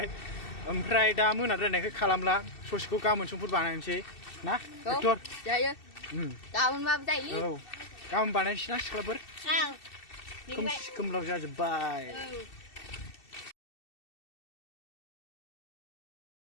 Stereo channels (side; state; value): right; late; 2.7 ms